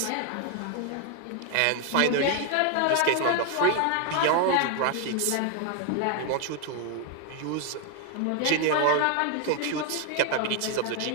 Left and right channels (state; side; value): different; both; correlation 0.01